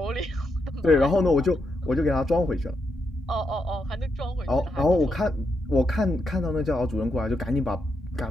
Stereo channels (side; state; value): both; normal; correlation 0.82